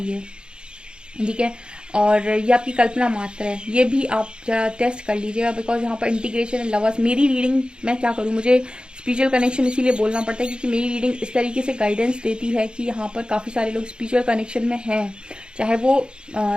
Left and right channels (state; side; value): late; left; 0.051 ms